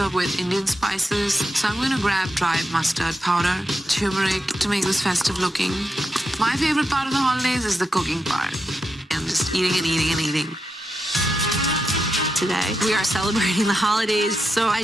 with Indian spices, so I'm going to grab dried mustard powder, turmeric to make this festive looking. My favorite part of the holidays is the cooking part. I'm just eating and eating and eating. Today, we are celebrating the holidays, so I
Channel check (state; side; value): normal; both; correlation 0.86